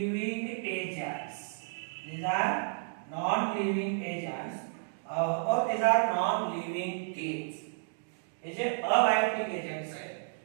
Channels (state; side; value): silent; left; digital silence